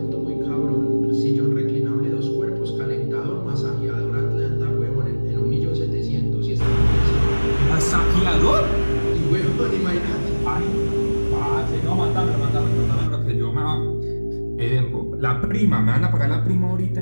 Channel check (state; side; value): inverted; both; correlation -1.00